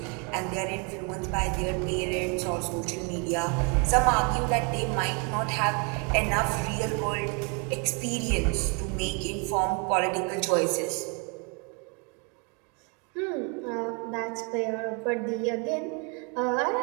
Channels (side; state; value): left; quieter; 34.2 dB